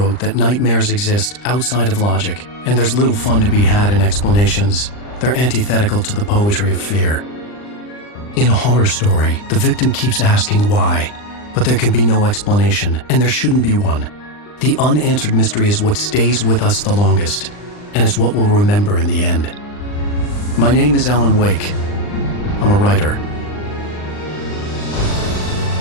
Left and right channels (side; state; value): right; late; 39 ms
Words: that nightmares exist outside of logic, and there's little fun to be had in explanations. They're antithetical to the poetry of fear. In a horror story, the victim keeps asking why, but there can be no explanation, and there shouldn't be one. The unanswered mystery is what stays with us the longest, and it's what we'll remember in the end. My name is Alan Wake. I'm a writer.